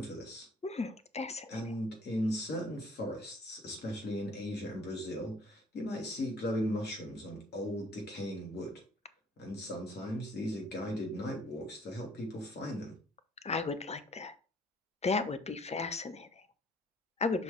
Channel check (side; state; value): both; normal; correlation 0.58